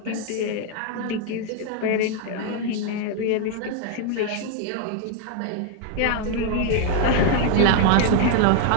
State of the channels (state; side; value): different; both; correlation 0.01